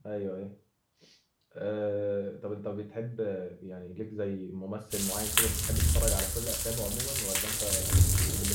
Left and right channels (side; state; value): both; identical; correlation 1.00